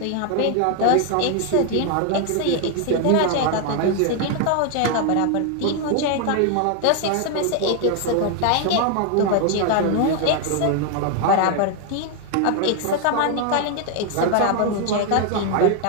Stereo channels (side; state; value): both; different; correlation 0.00